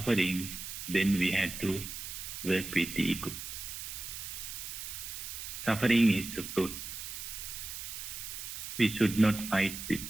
then we have to work with the ego. Suffering is a fruit. We should not fight with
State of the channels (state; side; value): noise; right; hiss, 8 dB below the sound